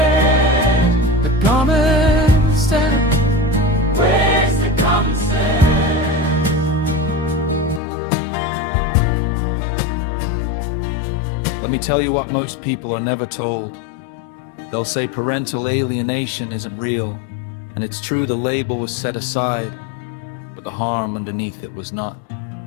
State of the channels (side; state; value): right; drops out; at 7.8 s